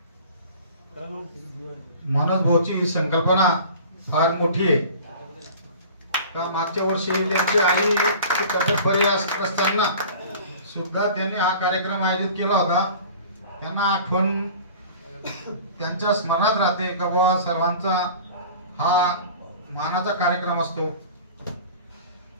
मनोज भाऊची ही संकल्पना फार मोठी आहे का मागच्या वर्षी त्यांची आई तब्येत बरी असताना सुद्धा त्यांनी हा कार्यक्रम आयोजित केला होता। त्यांना आठवण त्यांच्या स्मरणात राहते का बाबा सर्वांचा हा मानाचा कार्यक्रम असतो।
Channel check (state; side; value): inverted; both; correlation -0.42